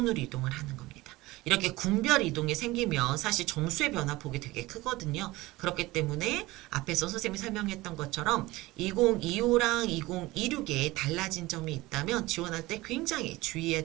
이동을 하는 겁니다. 이렇게 군별 이동이 생기면 사실 점수의 변화폭이 되게 크거든요. 그렇기 때문에 앞에서 선생님이 설명했던 것처럼 2025랑 2026에 달라진 점이 있다면 지원할 때 굉장히 주의해야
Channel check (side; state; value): left; quieter; 19.8 dB